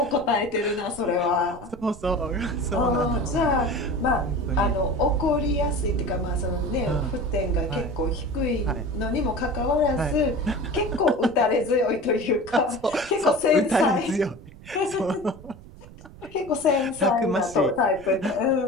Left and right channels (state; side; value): noise; right; rumble, 19 dB below the sound